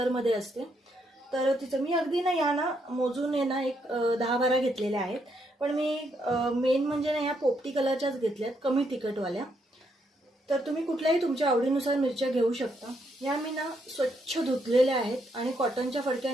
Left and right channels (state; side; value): normal; both; correlation 0.76